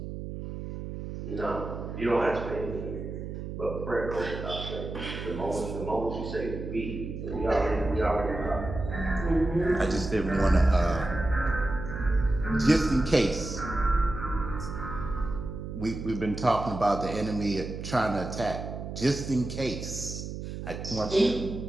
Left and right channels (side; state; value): right; noise; hum, 7 dB below the sound